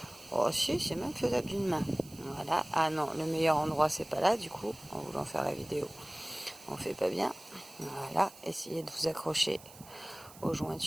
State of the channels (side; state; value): right; noise; hiss, 20 dB below the sound